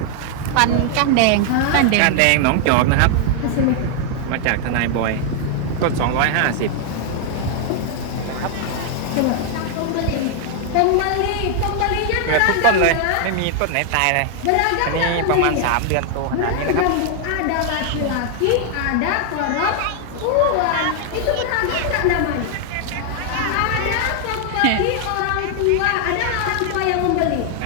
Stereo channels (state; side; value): different; both; correlation 0.00